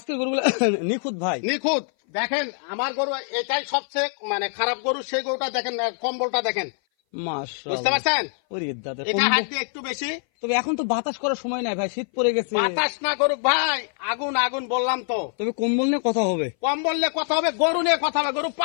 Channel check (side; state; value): right; silent; 59 dB below the other